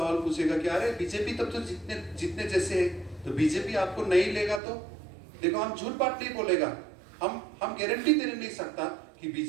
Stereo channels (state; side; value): drops out; left; at 4.6 s